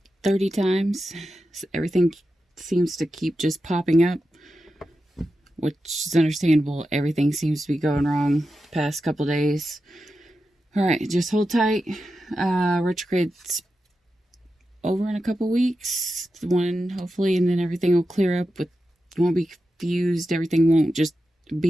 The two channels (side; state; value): both; normal; correlation 0.90